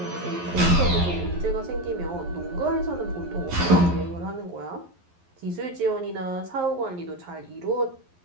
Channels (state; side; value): late; left; 11 ms